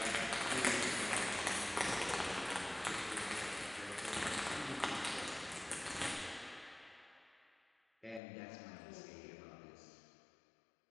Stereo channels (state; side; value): drops out; right; at 8.2 s